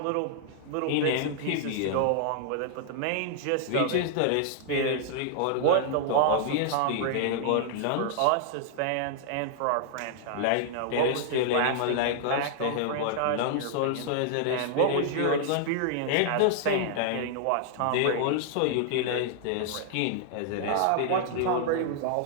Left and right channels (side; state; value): both; different; correlation 0.00